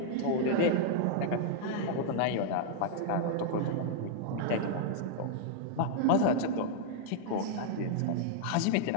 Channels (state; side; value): different; both; correlation -0.01